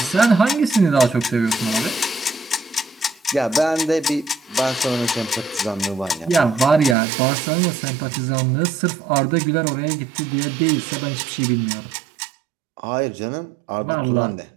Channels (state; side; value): drops out; left; at 7.0 s